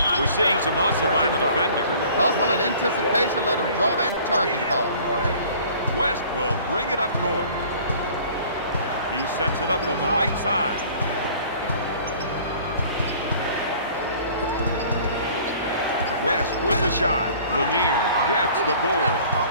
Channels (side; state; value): both; inverted; correlation -0.50